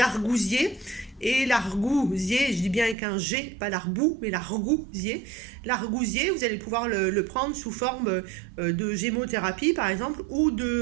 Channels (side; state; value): left; drops out; at 3.0 s